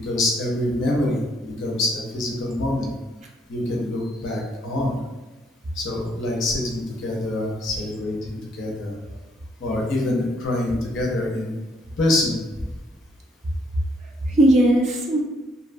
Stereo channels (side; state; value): both; normal; correlation 0.70